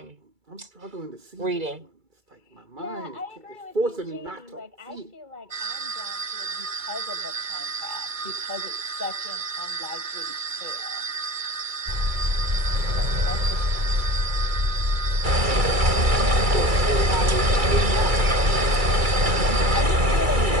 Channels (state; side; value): late; left; 2.3 ms